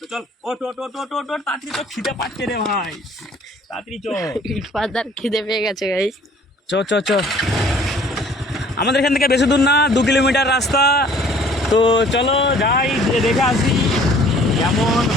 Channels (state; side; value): normal; both; correlation 0.54